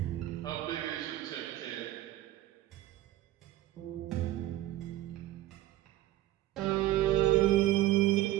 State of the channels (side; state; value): left; quieter; 15.0 dB